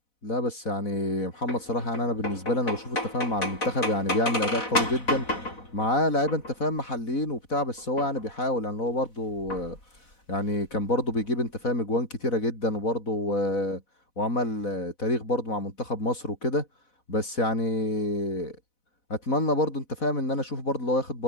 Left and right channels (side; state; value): right; late; 4.1 ms